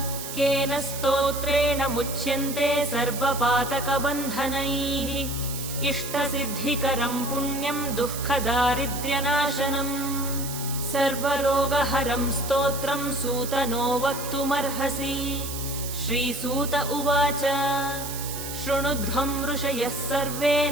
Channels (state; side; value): noise; right; hiss, 8 dB below the sound